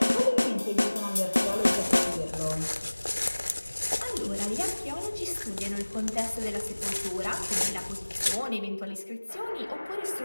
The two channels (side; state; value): both; inverted; correlation -1.00